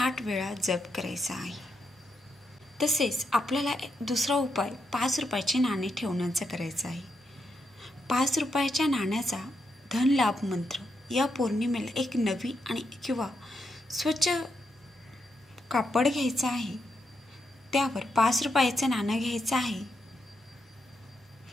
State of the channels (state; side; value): normal; both; correlation 0.82